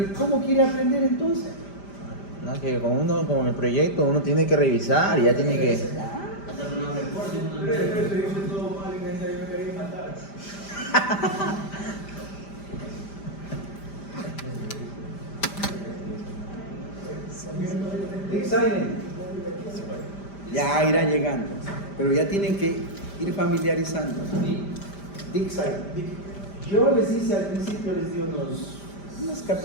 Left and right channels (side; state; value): right; late; 5.0 ms